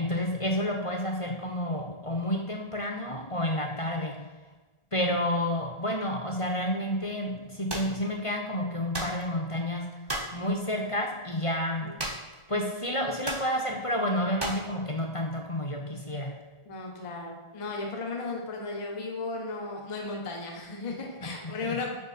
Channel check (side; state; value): right; late; 1.4 ms